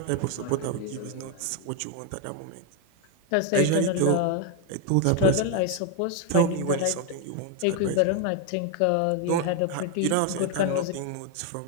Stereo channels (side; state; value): both; different; correlation 0.01